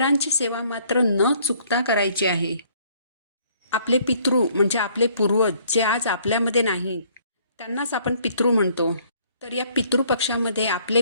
सेवा मात्र न चुकता करायची आहे. आपले पितृ म्हणजे आपले पूर्वज जे आज आपल्यामध्ये नाहीत त्यांनाच आपण पितृ म्हणतो. तर या पितृपक्षामध्ये आपले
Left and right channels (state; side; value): inverted; both; correlation -0.62